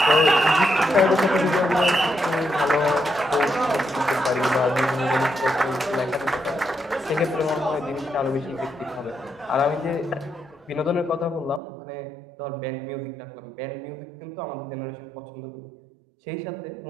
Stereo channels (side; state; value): left; drops out; at 11.6 s